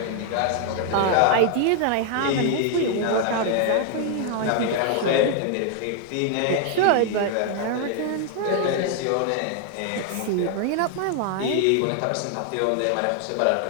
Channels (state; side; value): different; both; correlation 0.00